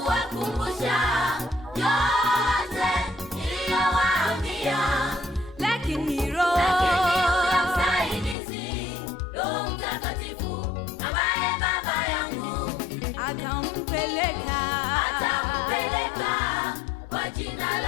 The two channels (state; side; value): drops out; right; at 8.3 s